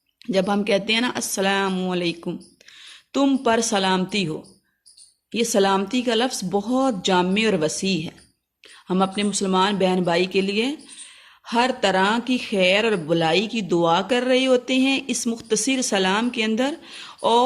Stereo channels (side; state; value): both; identical; correlation 1.00